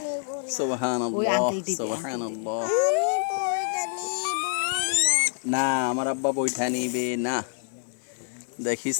সুবহানাল্লাহ সুবহানাল্লাহ না আমার আব্বা বইটা নিবে না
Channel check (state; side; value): silent; right; 60 dB below the other